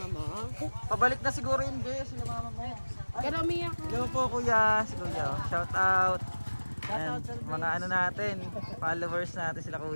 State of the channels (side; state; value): both; inverted; correlation -1.00